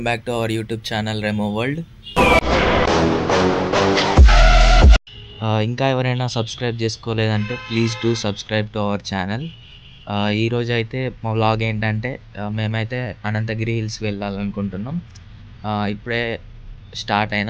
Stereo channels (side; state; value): both; identical; correlation 1.00